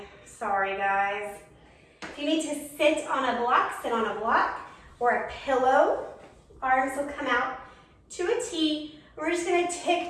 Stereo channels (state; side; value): identical; both; correlation 1.00